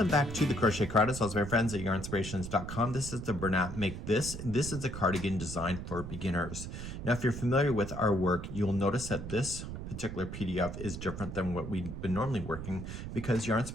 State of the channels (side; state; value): right; noise; rumble, 8 dB below the sound